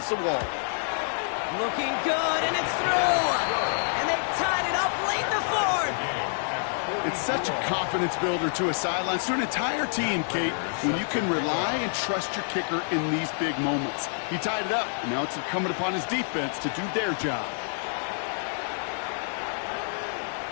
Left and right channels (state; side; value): silent; right; digital silence